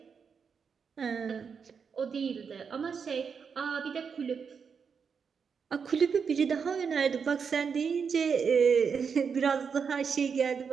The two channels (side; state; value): left; quieter; 6.2 dB